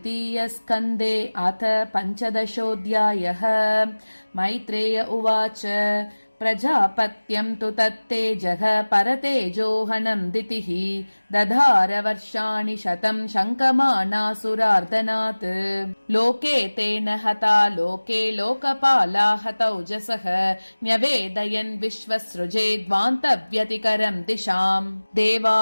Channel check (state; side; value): inverted; both; correlation -1.00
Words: अथ पञ्चदशोऽध्यायः। मैत्रेय उवाच प्रजापत्यं तु तत्तेजः परतेजोहनं दितिः दधार वर्षाणि शतं शङ्कमानासुरार्दनात्। लोके तेन हता लोके लोकपाला हतौजसः न्यवेदयन् विश्वसृजेद्वान्तव्यतिकरं दिशाम्। देवा